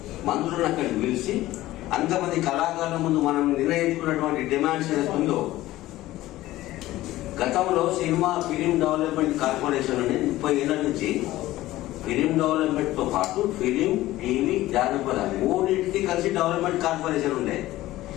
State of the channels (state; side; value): quieter; right; 16.2 dB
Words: మంత్రులను అక్కడికి పిలిచి అంతమంది కళాకారుల ముందు మనం నిర్ణయించుకున్నటువంటి డిమాండ్స్ ఏదైతుందో, గతంలో సినిమా ఫిలిం డెవలప్మెంట్ కార్పొరేషన్ అని 30 ఏళ్ల నుంచి ఫిలిం డెవలప్మెంట్ తో పాటు ఫిలిం, టీవీ, జానపద 3 కలిసి డెవలప్మెంట్ కార్పొరేషన్ ఉండే.